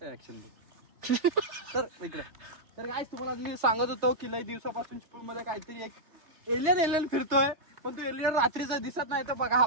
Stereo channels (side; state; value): left; late; 3.4 ms